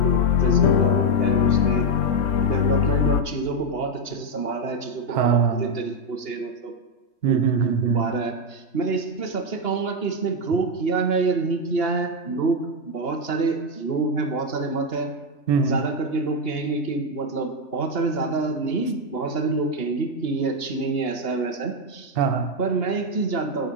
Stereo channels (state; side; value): late; right; 2.8 ms